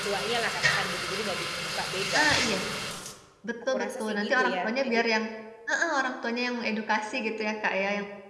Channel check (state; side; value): identical; both; correlation 1.00